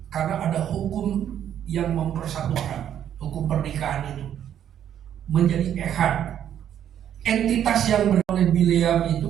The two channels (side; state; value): left; quieter; 10.0 dB